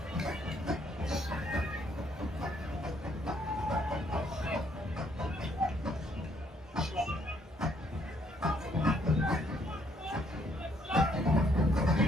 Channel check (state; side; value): normal; both; correlation 0.69